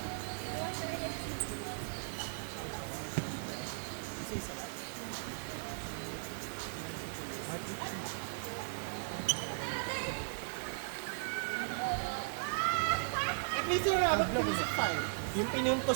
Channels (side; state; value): left; silent; digital silence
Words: At least yung rabat pumisip pa eh. Yung